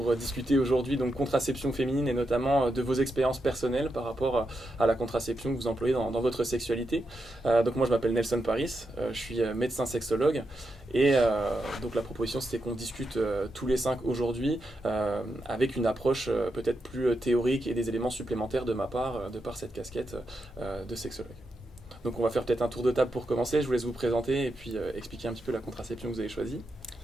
discuter aujourd'hui donc contraception féminine et notamment de vos expériences personnelles par rapport à la contraception que vous employez dans votre sexualité. Donc moi je m'appelle Nelson Paris, je suis médecin sexologue et donc la proposition c'était qu'on discute tous les cinq aujourd'hui avec une approche peut-être plus théorique et des éléments supplémentaires de ma part de par cette casquette de sexologue. Donc on va faire peut-être un tour de table pour commencer. Je vous laisse vous présenter et puis expliquer un petit peu la contraception que vous avez choisie.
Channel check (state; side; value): normal; both; correlation 0.85